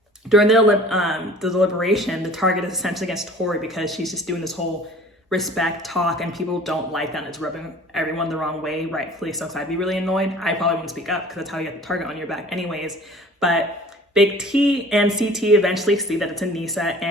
During the deliberation, the target is essentially against Tori because she's just doing this whole respect talk and people don't like that. And it's rubbing everyone the wrong way, rightfully so. So I'd be really annoyed. I probably wouldn't speak up because that's how you get the target on your back anyways. But Big T and CT eventually see that it's Anissa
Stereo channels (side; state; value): both; normal; correlation 0.46